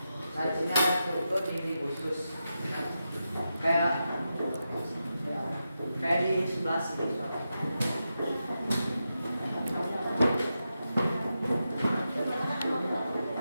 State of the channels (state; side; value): inverted; both; correlation -0.89